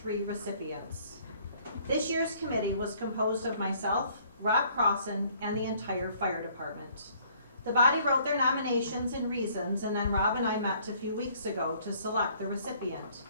recipients. This year's committee was composed of myself, Rob Crossan, and the entire fire department. The body wrote their nominations and reasons, and then Rob and I met a few weeks ago to select the recipient.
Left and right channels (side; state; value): both; inverted; correlation -0.60